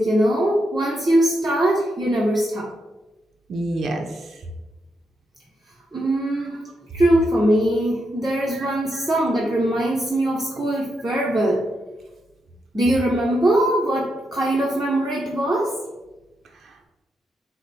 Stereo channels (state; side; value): normal; both; correlation 0.83